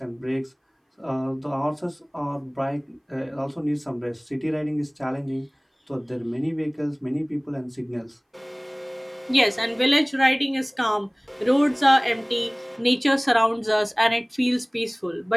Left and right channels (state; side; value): identical; both; correlation 1.00